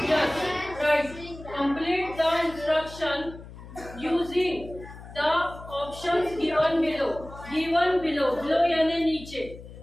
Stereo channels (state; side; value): noise; left; hum, 16 dB below the sound